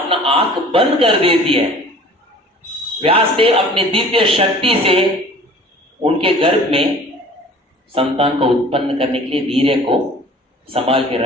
आंख बंद कर देती है। व्यासदेव अपनी दिव्य शक्ति से उनके गर्भ में संतान को उत्पन्न करने के लिए वीर्य को संभाल के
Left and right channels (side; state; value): both; normal; correlation 0.47